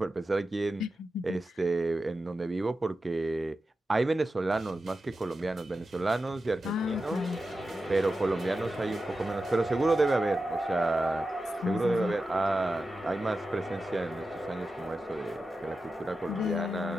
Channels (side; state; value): both; normal; correlation 0.92